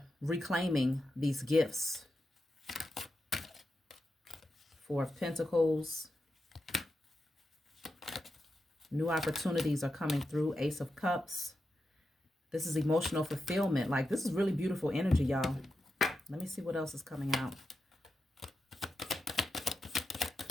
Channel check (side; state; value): both; normal; correlation 0.88